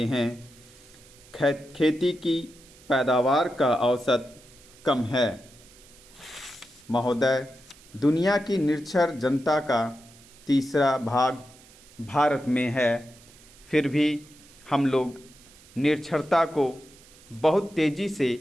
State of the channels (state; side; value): noise; right; hiss, 24 dB below the sound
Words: हैं। खेती की पैदावार का औसत कम है। महोदय, दुनिया की निरक्षर जनता का तीसरा भाग भारत में है, फिर भी हम लोग निरक्षरता को बहुत तेज़ी से